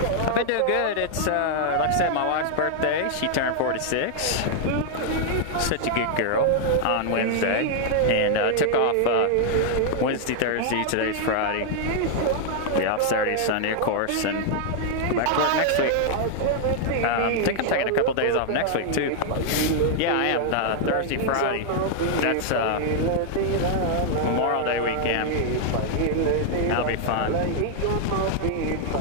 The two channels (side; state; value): both; different; correlation 0.00